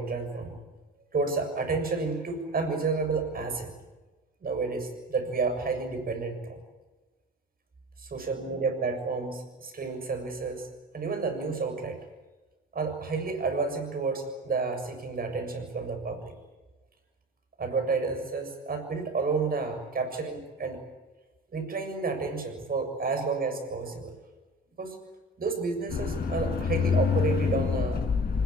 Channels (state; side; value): normal; both; correlation 0.35